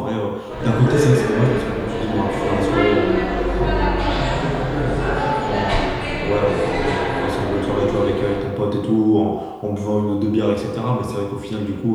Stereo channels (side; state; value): both; identical; correlation 1.00